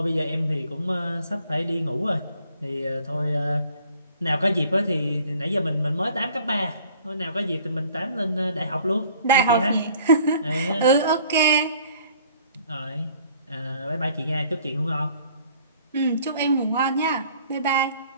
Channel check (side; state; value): both; inverted; correlation -0.55